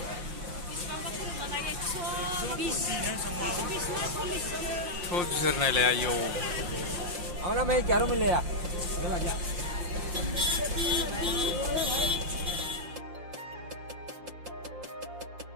थ' बिसोर नायलाय आयौ आवना मैं क्या रो मिले या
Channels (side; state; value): left; late; 5.7 ms